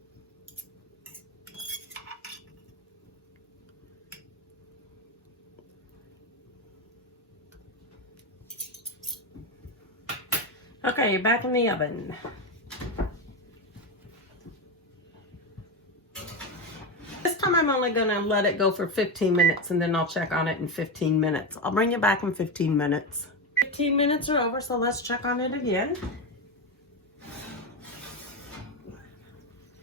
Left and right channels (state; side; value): normal; both; correlation 0.15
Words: Okay, back in the oven. This time I'm only going to let it go for 15 minutes and then I'll check on it in 15 minutes. I'll bring you back in 15 minutes. 15 minutes are over, so let's check on it again.